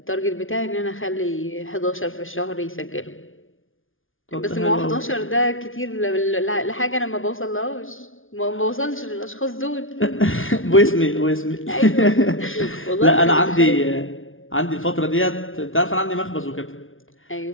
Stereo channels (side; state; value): right; late; 0.58 ms